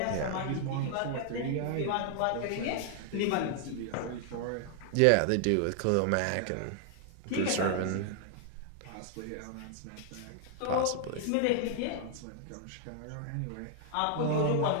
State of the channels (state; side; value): different; both; correlation 0.00